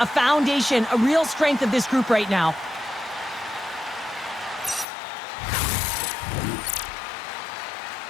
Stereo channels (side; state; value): right; drops out; at 4.9 s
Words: foundation, a real strength of this group right now.